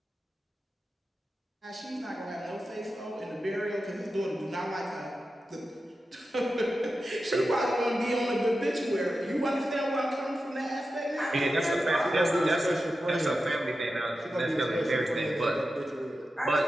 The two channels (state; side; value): normal; both; correlation 0.91